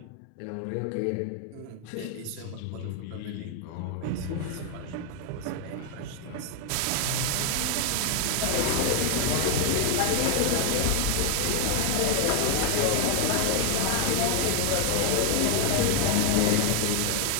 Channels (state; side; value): different; both; correlation 0.01